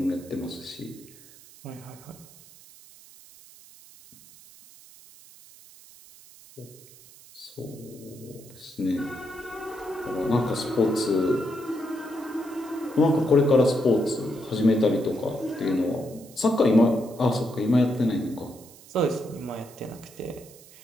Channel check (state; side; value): noise; right; hiss, 22 dB below the sound